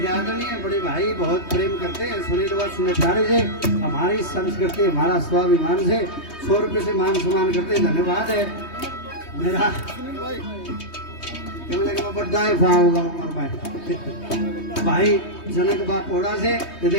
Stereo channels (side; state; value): right; late; 3.2 ms